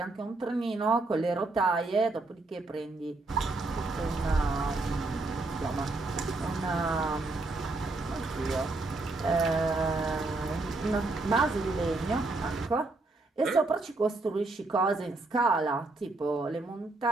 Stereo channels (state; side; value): quieter; left; 3.2 dB